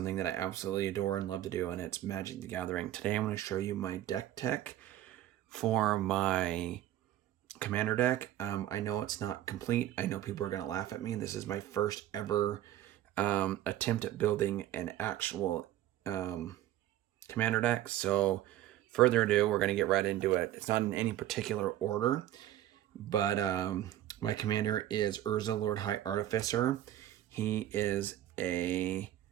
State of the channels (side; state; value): left; quieter; 13.0 dB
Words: that I absolutely adore and love to do, and it's Magic the Gathering. Today I'm going to show you my deck tech for my commander deck. I know it's not complete. I know people are going to laugh at me. This is my first ever attempt at building an actual commander deck. So further ado, we're going to get right into it. It's not in any particular order, but my commander is Urza, Lord High Artificer. He is a